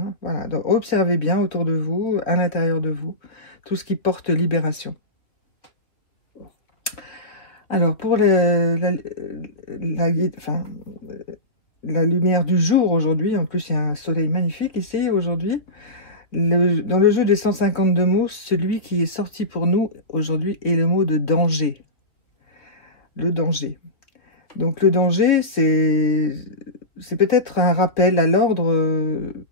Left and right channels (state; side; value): late; right; 3.0 ms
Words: Voilà, donc observez bien autour de vous, à l'intérieur de vous, tout ce qui porte libération. Alors, pour la lumière du jour aujourd'hui, en plus il y a un soleil magnifique ici aujourd'hui, dans le jeu des 152 mots, celui qui est sorti pour nous aujourd'hui est le mot de danger. Le danger. Donc le danger, c'est peut-être un rappel à l'ordre